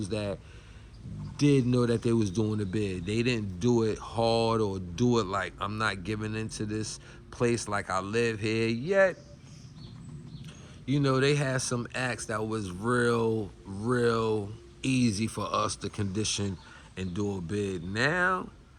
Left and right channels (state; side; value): identical; both; correlation 1.00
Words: that did know that they was doing the bid. They didn't do it hard or do it like, I'm not giving into this place like I live here. Yet, you know, they had some acts that was real easy for us to condition and do a bid. Now,